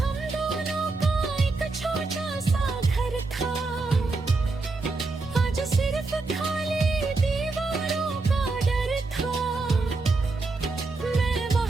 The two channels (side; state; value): left; quieter; 3.6 dB